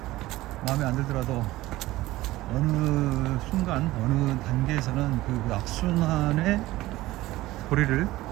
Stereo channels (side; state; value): left; quieter; 17.5 dB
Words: 마음에 안 들더라도 어느 순간, 어느 단계에서는 그 악순환의 고리를